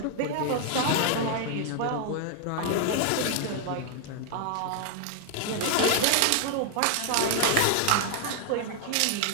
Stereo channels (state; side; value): different; both; correlation 0.00